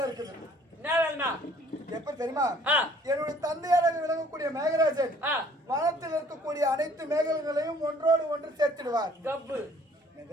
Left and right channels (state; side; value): normal; both; correlation 0.57